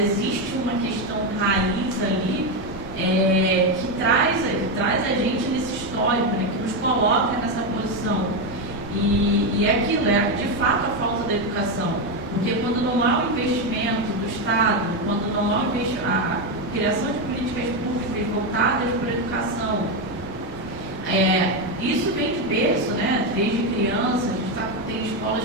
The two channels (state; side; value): normal; both; correlation 0.09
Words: uma questão raiz ali que traz a gente nesse histórico, né, que nos coloca nessa posição. E é aquilo, de fato a falta da educação, porque quando não há o investimento do Estado, quando não há a criação de políticas públicas voltadas para a educação, isso vem de berço, né? Desde criança, a gente tem escolas